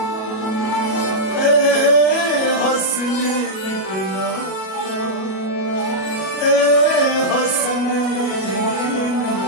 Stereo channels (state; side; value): late; right; 37 ms